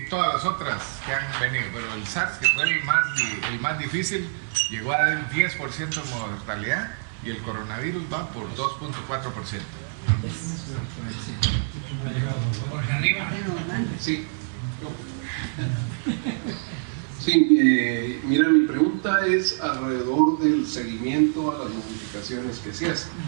todas las otras que han venido, pero el SARS, que fue el más difícil, llegó a dar el 10% de mortalidad y el coronavirus va por 2.4%. Sí. Sí, mira, mi pregunta es alrededor del seguimiento a las modificaciones que se hacen.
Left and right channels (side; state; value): left; silent; 61 dB below the other